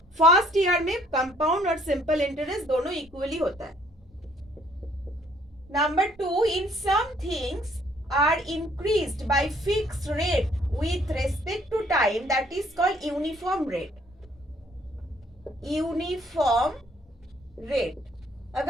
फर्स्ट ईयर में कंपाउंड और सिंपल इंटरेस्ट दोनों इक्वली होता है। Number 2, in some things are increased by fixed rate with respect to time, that is called uniform rate, uniform rate।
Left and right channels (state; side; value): normal; both; correlation 0.63